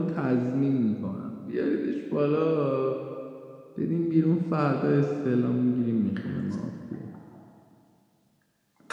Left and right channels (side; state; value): both; identical; correlation 1.00